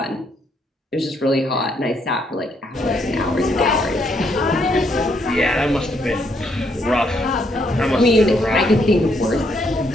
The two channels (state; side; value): normal; both; correlation 0.73